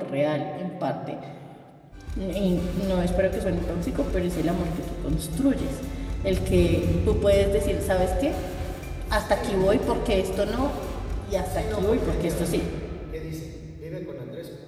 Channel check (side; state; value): both; identical; correlation 1.00